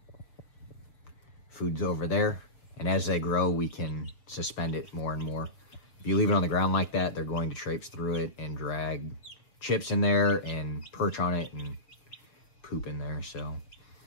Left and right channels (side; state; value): right; late; 6.7 ms